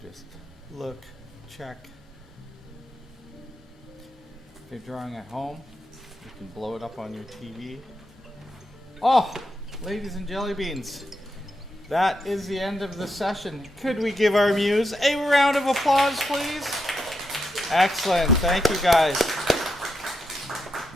Just look, check. If you're drawing at home, you can blow it up on your TV. Oh, ladies and jelly beans, that is the end of the session. Could we give our muse a round of applause, please? Excellent. Thank you, guys.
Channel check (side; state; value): both; normal; correlation 0.84